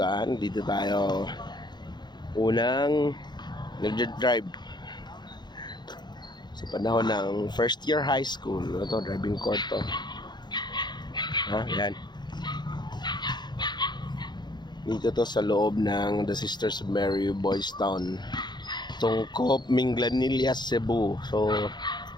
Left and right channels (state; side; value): late; right; 0.21 ms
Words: dito tayo unang nag-drive sa panahon ng first year high school. Ito, driving court to. Yan. Dito to sa loob ng The Sisters of Mary Boys Town, Tungkop, Minglanilla, Cebu. So